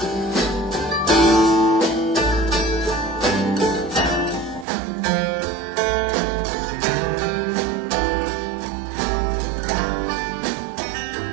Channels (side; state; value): left; drops out; at 4.7 s